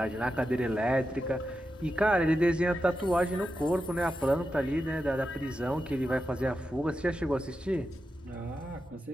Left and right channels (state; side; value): normal; both; correlation 0.89